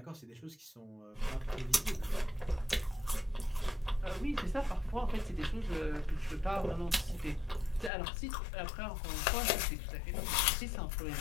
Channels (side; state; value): right; drops out; at 7.9 s